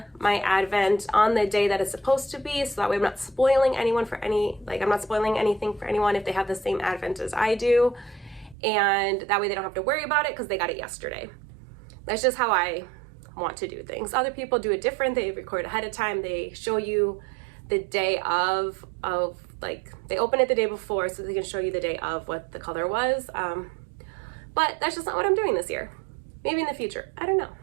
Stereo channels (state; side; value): drops out; left; at 8.6 s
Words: my Advent on the day that it's supposed to be, so that way I'm not spoiling anyone for I'm not spoiling anything for anyone if they have the same Advent as I do, and that way they don't have to worry about it because they got it yesterday. That's just how I want to do things. Other people do it different. They record ahead of time. They show you the day of like they open it the day before so they can show you the day of what the color was. But that's just not what I'm doing this year. Maybe in the future, I don't know.